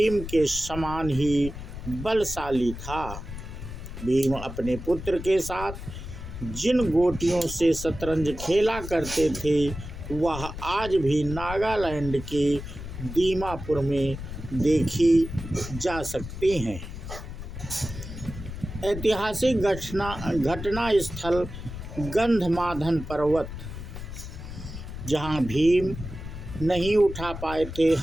के समान ही बलशाली था। भीम अपने पुत्र के साथ जिन गोटियों से शतरंज खेला करते थे वह आज भी नागालैंड के दीमापुर में देखी जा सकती हैं। ऐतिहासिक घटना स्थल गंधमादन पर्वत, जहां भीम नहीं उठा पाए थे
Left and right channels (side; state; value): left; noise; rumble, 9 dB below the sound